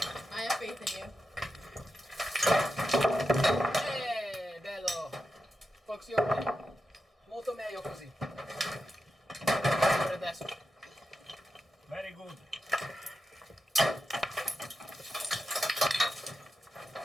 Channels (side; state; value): both; normal; correlation 0.89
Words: have faith in you. Bello. Funziona. Molto meglio così. Guarda adesso. Very good.